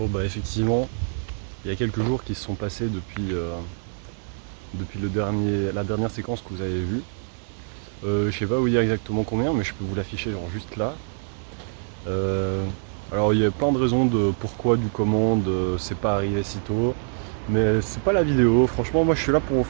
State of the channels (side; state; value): left; silent; digital silence